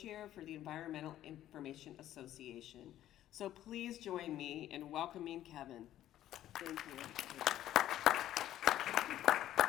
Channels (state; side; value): quieter; right; 12.7 dB